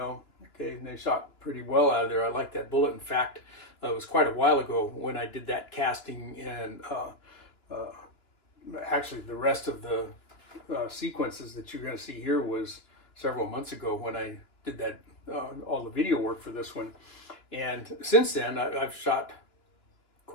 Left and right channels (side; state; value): right; late; 2.9 ms